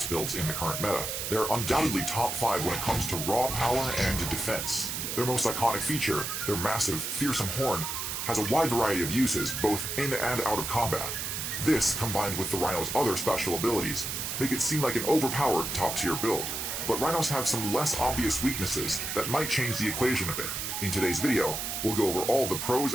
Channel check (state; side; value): noise; right; hiss, 3 dB below the sound